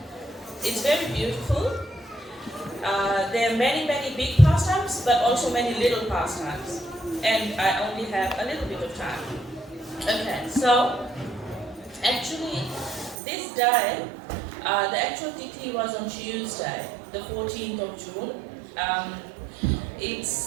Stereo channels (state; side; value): drops out; left; at 13.2 s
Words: it's very beautiful. There are many big pastimes, but also many little pastimes, and I only have a little bit of time. Okay, so actually this day, the actual tithi was on Tuesday, the 14th of June.